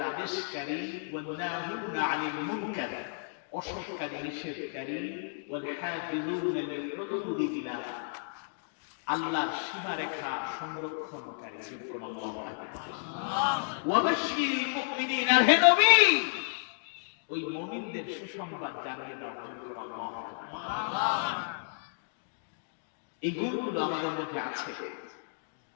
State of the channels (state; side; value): silent; right; digital silence